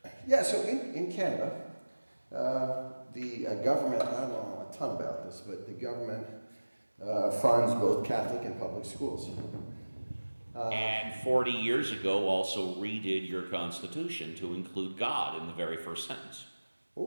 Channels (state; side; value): inverted; both; correlation -1.00